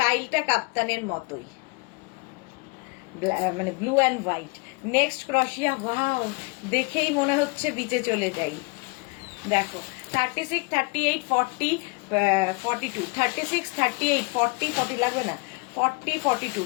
কাপ্তানের মতোই, মানে ব্লু অ্যান্ড হোয়াইট। নেক্সট ক্রশিয়া, ওয়াও, দেখেই মনে হচ্ছে বিচে চলে যাই। দেখো 36, 38, 40, 42, 36, 38, 40, 40 লাগবে না, 40, 42,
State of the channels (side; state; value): right; quieter; 29.8 dB